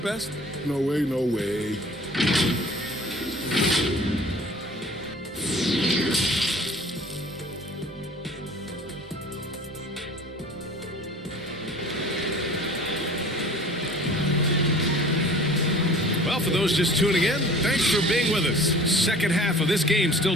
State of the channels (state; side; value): normal; both; correlation 0.46